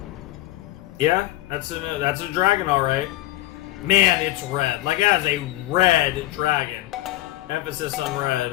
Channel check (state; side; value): quieter; right; 17.1 dB